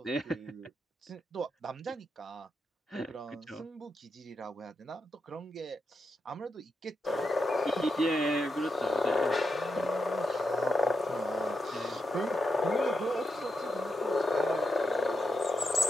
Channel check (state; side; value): normal; both; correlation 0.85